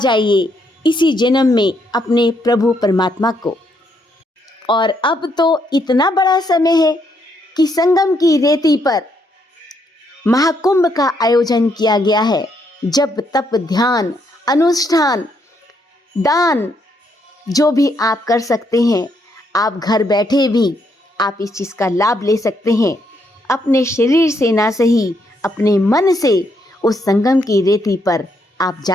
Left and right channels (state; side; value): normal; both; correlation 0.75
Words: इसी जन्म में अपने प्रभु परमात्मा को। और अब तो इतना बड़ा समय है कि संगम की रेती पर महाकुंभ का आयोजन किया गया है। जब तप ध्यान अनुष्ठान दान जो भी आप कर सकते हैं, आप घर बैठे भी आप इस चीज़ का लाभ ले सकते हैं। अपने शरीर से ना सही अपने मन से उस संगम की रेती पर आप